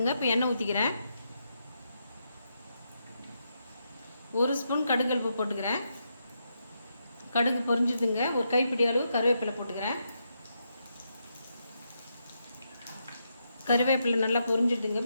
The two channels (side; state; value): both; inverted; correlation -0.81